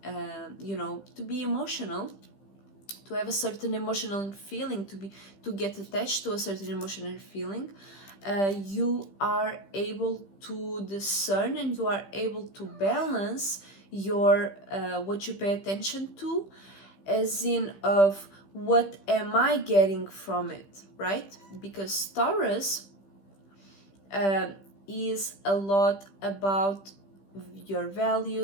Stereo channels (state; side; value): late; right; 15 ms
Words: to be emotional, to have a certain emotional feeling, to get attached to a certain emotional feeling. You are able to discern, and you are able to balance your what you pay attention to, as in of what am I getting from it, right? Because Taurus is a lot about your